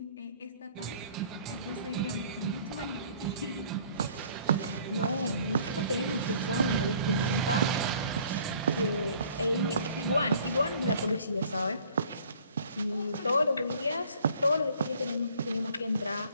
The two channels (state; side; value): inverted; both; correlation -0.55